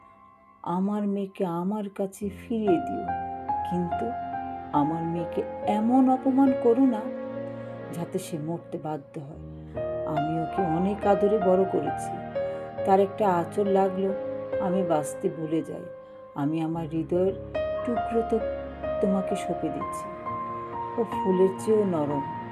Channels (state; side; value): identical; both; correlation 1.00